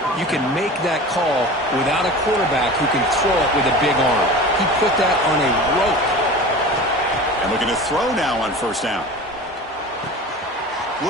you can make that call without a quarterback who can throw it with a big arm. He put that on a rope. And looking to throw now on first down.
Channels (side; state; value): both; normal; correlation 0.35